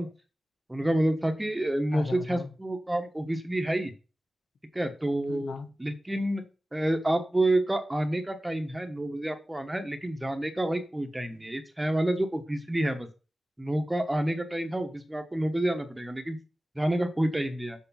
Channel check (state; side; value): normal; both; correlation 0.96